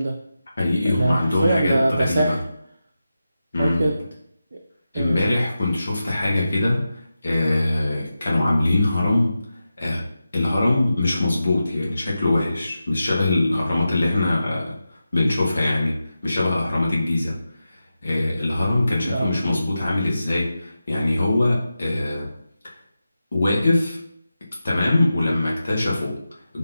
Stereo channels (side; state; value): both; inverted; correlation -0.91